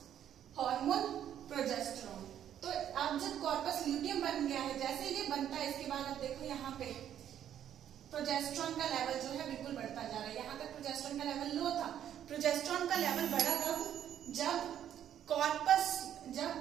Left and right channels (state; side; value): quieter; left; 10.2 dB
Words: हार्मोन प्रोजेस्टेरोन। तो अब जब कॉर्पस ल्यूटियम बन गया है, जैसे ये बनता है इसके बाद अब देखो यहाँ पे प्रोजेस्टेरोन का लेवल जो है बिल्कुल बढ़ता जा रहा है। यहाँ तक प्रोजेस्टेरोन का लेवल लो था, प्रोजेस्टेरोन का लेवल बढ़ा कब, जब